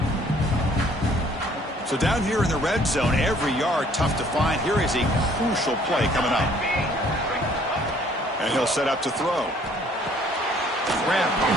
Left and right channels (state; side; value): normal; both; correlation 0.59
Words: So down here in the red zone, every yard tough to find. Here is a crucial play coming up. And he'll set up to throw. Grab